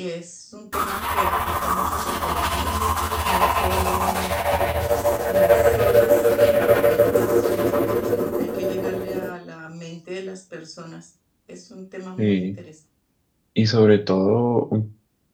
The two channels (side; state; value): both; identical; correlation 1.00